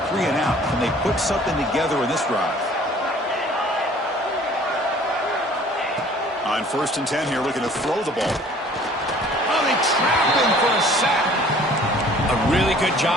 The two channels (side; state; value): both; normal; correlation 0.52